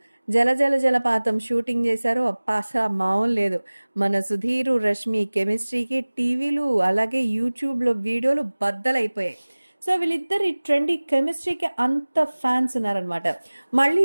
'జల జల జలపాతం' షూటింగ్ చేశారు. అబ్బా! అసల మామూలు లేదు. మన 'సుధీర్', 'రష్మి' కెమిస్ట్రీకి టీవీలు అలాగే యూట్యూబ్‌లో వీడియోలు బద్దలైపోయాయి. సో, వీళ్ళిద్దరి ట్రెండీ కెమిస్ట్రీకి అంత ఫ్యాన్స్ ఉన్నారనమాట. మళ్ళీ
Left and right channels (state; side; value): inverted; both; correlation -1.00